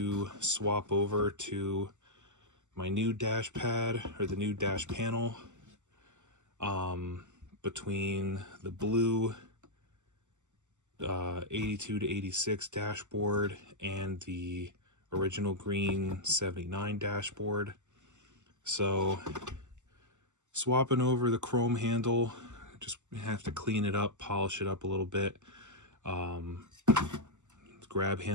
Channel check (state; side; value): late; left; 0.84 ms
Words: swap over to my new dash pad, or the new dash panel, between the blue 82 to 86 dashboard and the original green 79 dashboard. So swapping over the chrome handle, just have to clean it up, polish it up a little bit. Grab